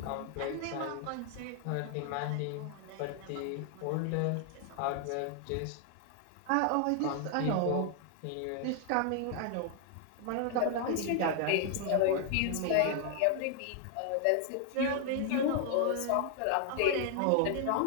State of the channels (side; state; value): both; different; correlation 0.00